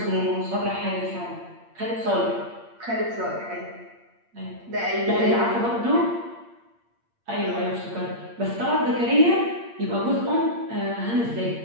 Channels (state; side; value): late; left; 8.6 ms